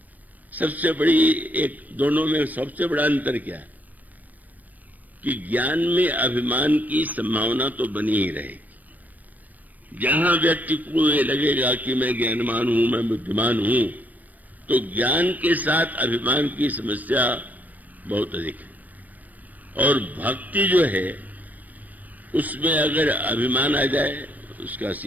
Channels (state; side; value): late; left; 0.081 ms